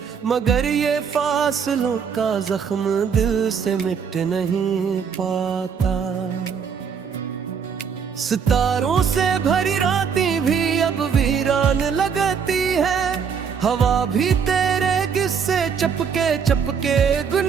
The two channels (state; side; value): quieter; left; 6.7 dB